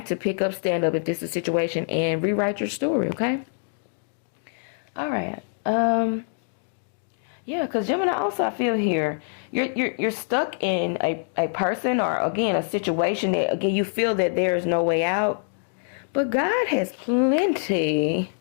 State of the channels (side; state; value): right; silent; digital silence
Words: to pick up, stand up if this is a situation, and rewrite your story, okay? All right. Yeah, because Gemini also, I feel here, you're stuck in a person or, again, a situation that, again, you feel that there is no way out. But God has plenty